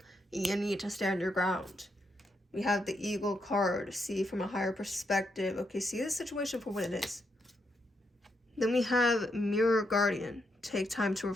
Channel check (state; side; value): normal; both; correlation 0.80